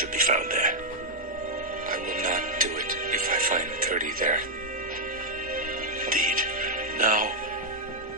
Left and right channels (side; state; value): both; normal; correlation -0.02